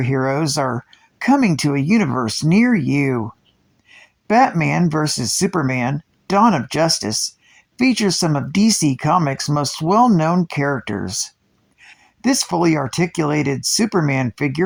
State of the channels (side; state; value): both; identical; correlation 1.00